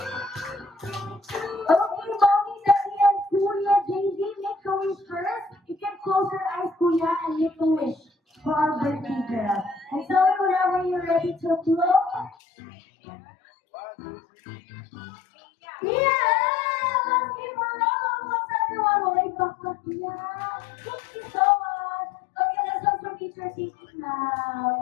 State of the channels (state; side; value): drops out; right; at 12.4 s